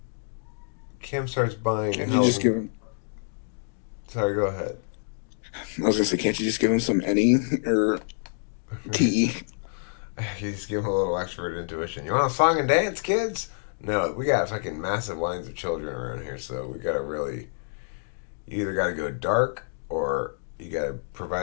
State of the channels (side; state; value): right; silent; digital silence